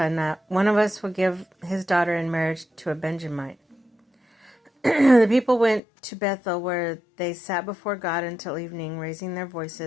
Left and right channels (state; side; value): drops out; right; at 5.8 s